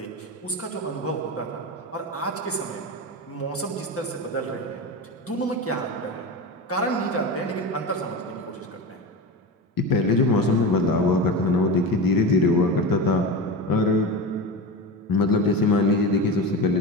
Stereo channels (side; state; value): both; normal; correlation 0.23